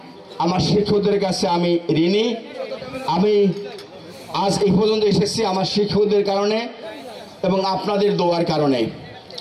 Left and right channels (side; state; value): both; identical; correlation 1.00